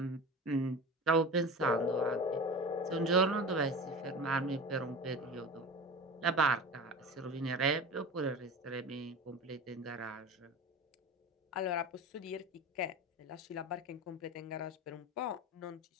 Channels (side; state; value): both; normal; correlation 0.32